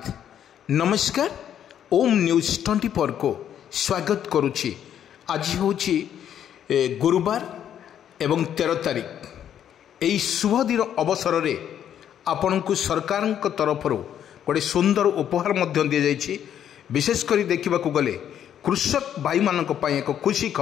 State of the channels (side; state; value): right; quieter; 9.8 dB